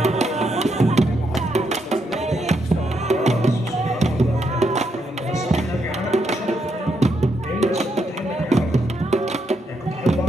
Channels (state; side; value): normal; both; correlation 0.79